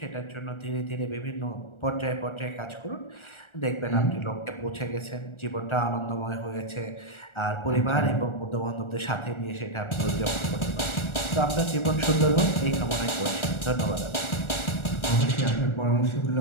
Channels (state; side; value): late; right; 1.4 ms